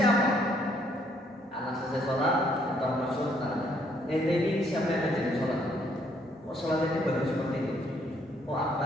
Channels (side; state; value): both; normal; correlation 0.68